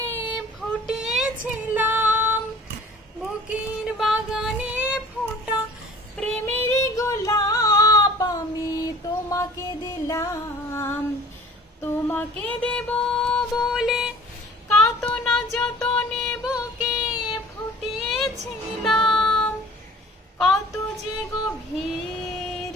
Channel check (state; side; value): normal; both; correlation 0.48